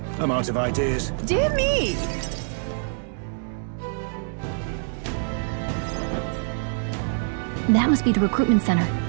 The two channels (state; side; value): silent; left; digital silence